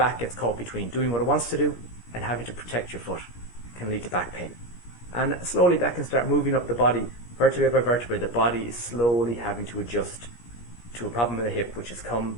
gets caught between doing what it wants to do and having to protect your foot. It can lead to back pain. And slowly that can start moving up the body, vertebrae by vertebrae. The body is slowly having to adjust to a problem in the hip, which has come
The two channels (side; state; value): right; late; 17 ms